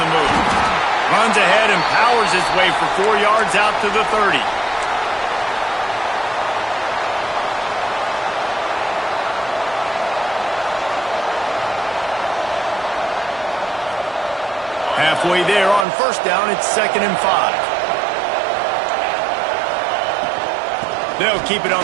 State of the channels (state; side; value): drops out; left; at 15.9 s